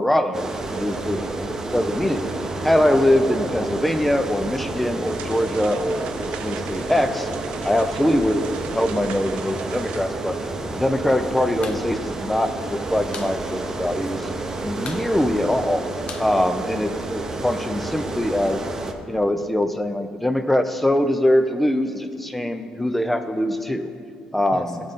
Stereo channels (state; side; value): normal; both; correlation 0.90